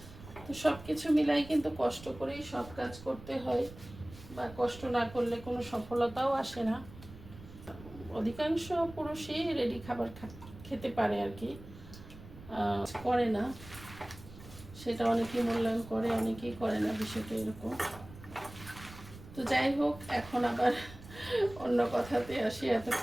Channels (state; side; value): noise; right; rumble, 17 dB below the sound